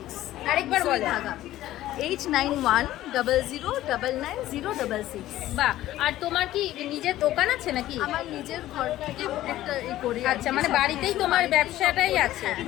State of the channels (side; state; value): right; quieter; 14.5 dB